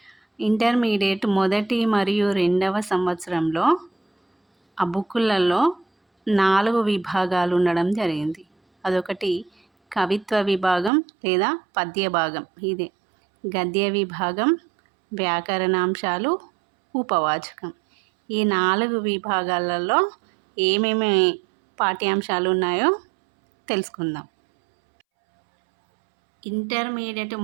ఇంటర్మీడియట్ మొదటి మరియు రెండవ సంవత్సరంలో ఆ బుక్కులలో 4 విభాగాలు ఉండడం జరిగింది. అదొకటి కవిత్వ విభాగం లేదా పద్య భాగం, ఇదే గద్య విభాగం, వ్యాకరణాంశాలు, ఉపవాచకం. ఈ 4 విభాగాలలో ఏమేమి పాఠ్యాంశాలు ఉన్నాయో తెలుసుకుందాం. ఇంటర్మీడియట్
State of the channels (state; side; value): drops out; left; at 10.9 s